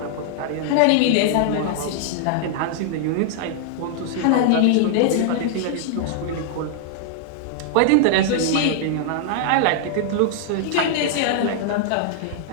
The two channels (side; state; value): both; different; correlation -0.01